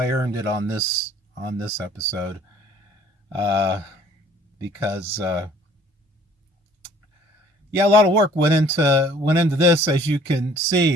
earned it on this episode, because yeah, a lot of work went into this, as you can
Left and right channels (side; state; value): both; normal; correlation 0.56